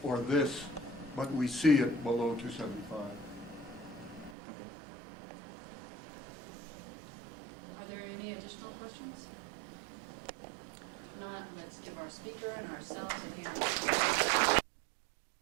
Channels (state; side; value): drops out; left; at 4.4 s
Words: or this, but we see it below 275. Are there any additional questions? If not, let's give our speaker and ourselves a hand.